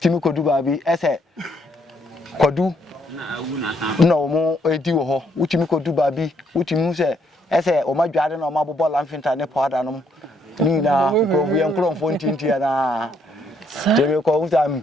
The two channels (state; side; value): normal; both; correlation 0.71